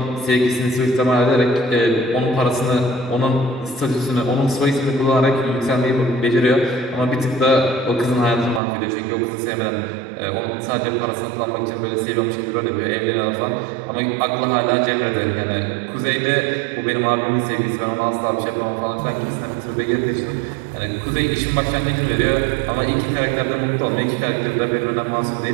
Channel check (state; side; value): drops out; left; at 8.6 s